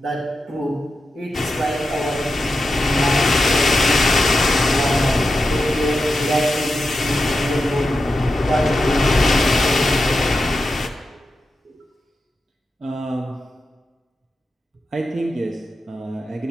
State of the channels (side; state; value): both; normal; correlation 0.89